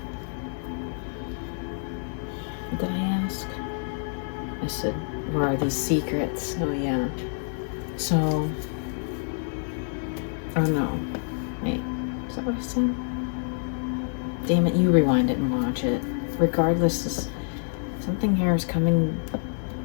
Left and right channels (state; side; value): silent; right; 60 dB below the other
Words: What did I ask? I said, where are these secrets? Oh yeah. So, oh no. Wait, is that what I said? Damn it, you rewind it and watch it. Regardless, something here is coming